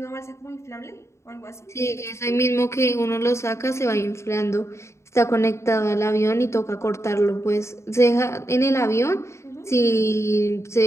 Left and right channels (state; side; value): late; right; 0.14 ms